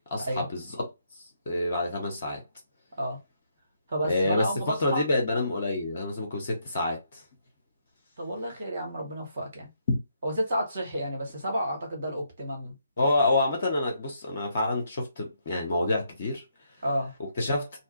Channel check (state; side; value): inverted; both; correlation -0.76